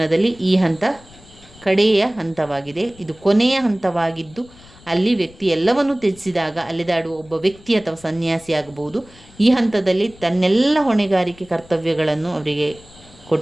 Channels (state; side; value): noise; left; rumble, 24 dB below the sound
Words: ಈ ಹಂತ ಕಡೆಯ ಹಂತವಾಗಿದೆ. ಇದು ಕೊನೆಯ ಹಂತವಾಗಿದ್ದು ಅಲ್ಲಿ ವ್ಯಕ್ತಿ ಎಲ್ಲವನ್ನೂ ತ್ಯಜಿಸಿದಾಗ ಅಲೆದಾಡುವ ಒಬ್ಬ ವ್ಯಕ್ತಿ ಅಥವಾ ಸನ್ಯಾಸಿ ಆಗಬಹುದು. ಈ ಹಂತದಲ್ಲಿ ತನ್ನೆಲ್ಲ ಹೊಣೆಗಾರಿಕೆ ಕರ್ತವ್ಯಗಳನ್ನು ಅವರಿಗೆ